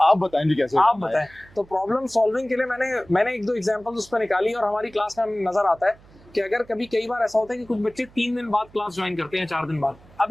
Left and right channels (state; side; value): noise; right; hum, 25 dB below the sound